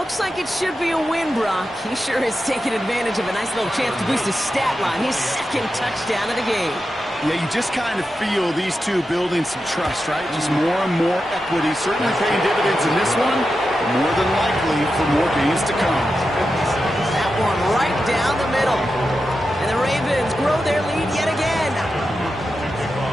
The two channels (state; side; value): normal; both; correlation 0.90